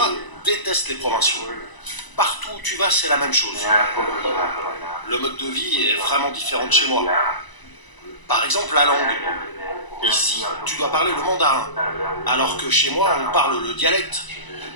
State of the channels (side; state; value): right; late; 1.0 ms